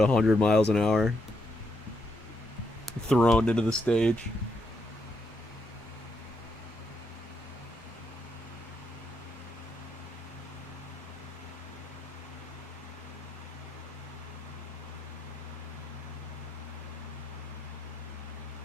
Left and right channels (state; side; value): normal; both; correlation 0.79